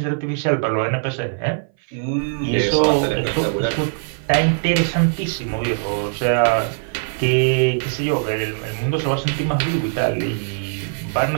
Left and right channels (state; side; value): silent; left; 58 dB below the other